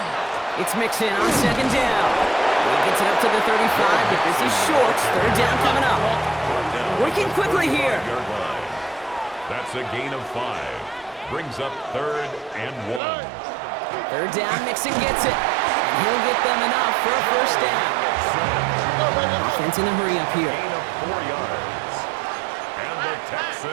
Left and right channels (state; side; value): drops out; left; at 13.0 s